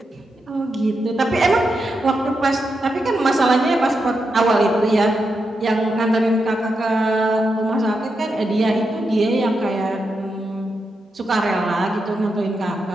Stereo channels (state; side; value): normal; both; correlation 0.86